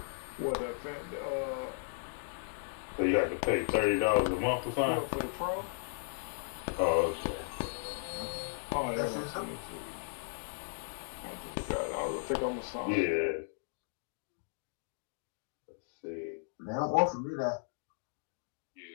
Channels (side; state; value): right; silent; digital silence